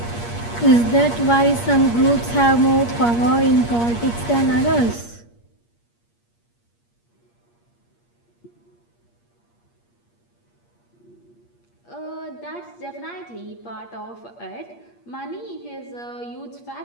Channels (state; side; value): late; right; 8.5 ms